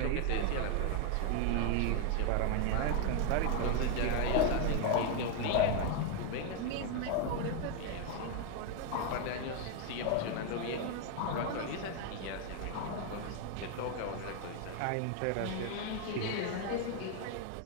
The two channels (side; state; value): both; different; correlation 0.01